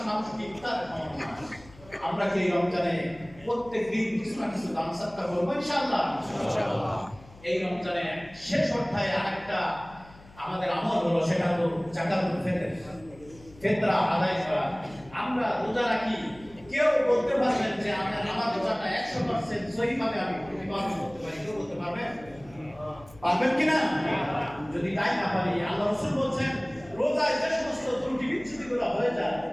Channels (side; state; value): left; noise; hum, 22 dB below the sound